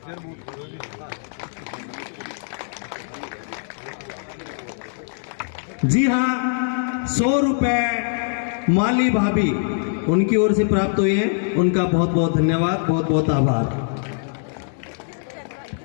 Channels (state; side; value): silent; right; digital silence